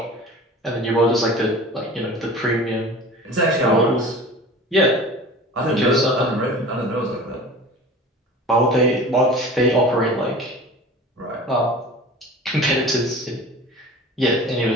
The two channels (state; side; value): normal; both; correlation 0.39